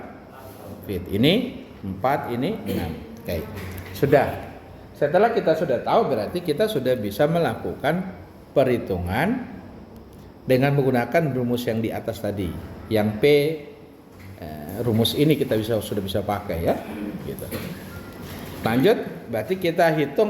feet. Ini 4, ini 6. Oke. Sudah. Setelah kita sudah tahu berarti kita sudah bisa melakukan perhitungan dengan menggunakan rumus yang di atas tadi. Yang P rumus ini kita sudah bisa pakai ya. Gitu. Lanjut, berarti kita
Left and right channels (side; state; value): both; identical; correlation 1.00